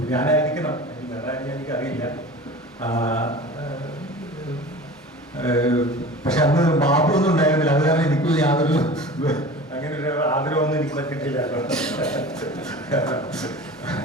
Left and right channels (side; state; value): both; normal; correlation 0.38